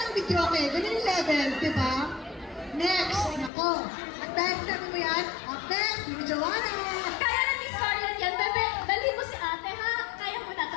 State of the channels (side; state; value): right; drops out; at 3.5 s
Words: videoke. Ganyan yung levels, di ba? Next, nako. At next, namin mo yan. Up next, yung Joanna. Kaya na Miss Scarlett yan, bebe. Dali mo si ate, ha? Kaya mo na